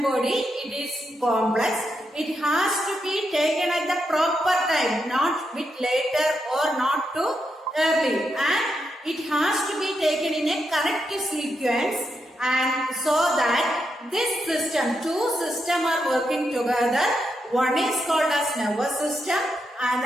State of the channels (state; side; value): normal; both; correlation 0.83